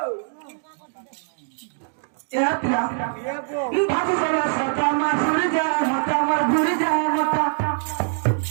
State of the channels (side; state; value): left; silent; 63 dB below the other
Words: भाजी चला सता मासुर जा मता मर गुर जा मता